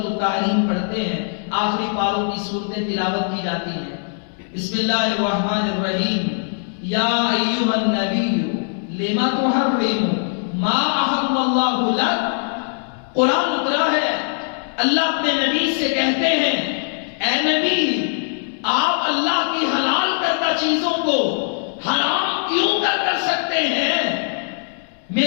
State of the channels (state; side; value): silent; right; digital silence